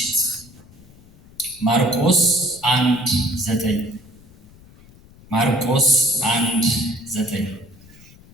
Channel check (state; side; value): noise; left; rumble, 24 dB below the sound